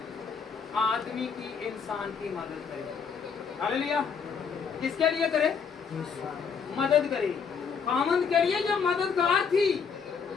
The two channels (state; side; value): quieter; right; 6.1 dB